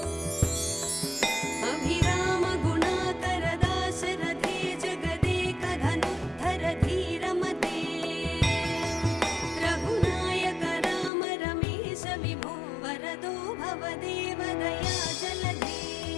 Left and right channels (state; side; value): drops out; right; at 11.1 s